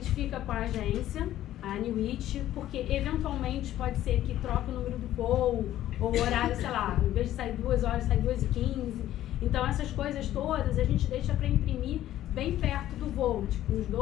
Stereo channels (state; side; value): quieter; right; 13.1 dB